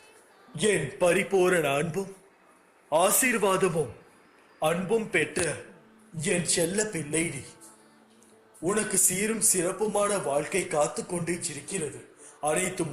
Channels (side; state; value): both; identical; correlation 1.00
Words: என் பரிபூரண அன்பும் ஆசீர்வாதமும் அன்பும் பெற்ற என் செல்ல பிள்ளை நீ. உனக்கு சீரும் சிறப்புமான வாழ்க்கை காத்து கொண்டே இருக்கிறது. அனைத்தும்